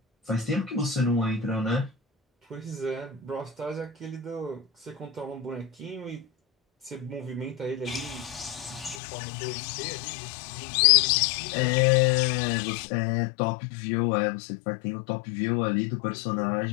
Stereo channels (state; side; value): drops out; right; at 9.0 s